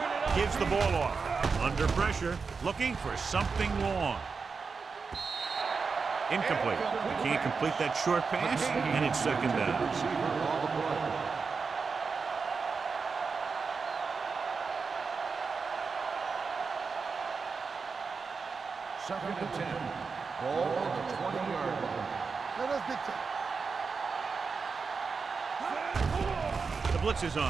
Gives the ball off. Under pressure, looking for something long. Incomplete. He can't complete that short pass, and it's second down. Second and 10. Ball on the 20-yard line. Let us dictate. The blitz is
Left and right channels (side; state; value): left; quieter; 5.0 dB